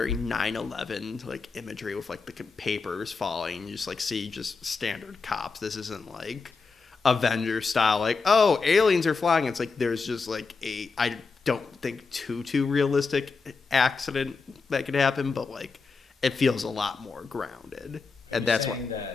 9/11 like imagery with like the papers falling. You just like see just standard cops. This isn't like Avengers style. Like, oh, aliens are flying. It's like there's just like I don't think too realistic accident that could happen, but like it feels a lot more grounded, and that's why.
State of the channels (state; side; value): quieter; right; 4.6 dB